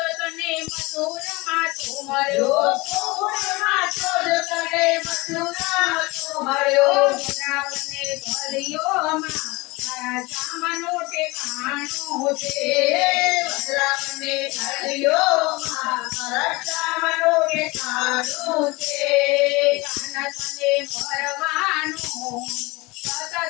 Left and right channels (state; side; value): quieter; right; 23.6 dB